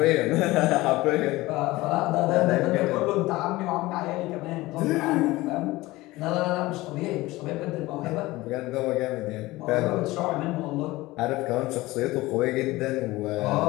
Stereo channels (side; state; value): right; quieter; 19.4 dB